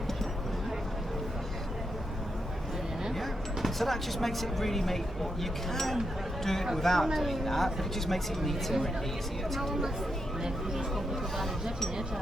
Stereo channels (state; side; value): normal; both; correlation 0.83